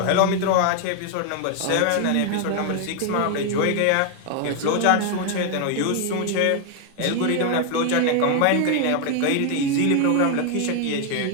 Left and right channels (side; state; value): both; different; correlation 0.00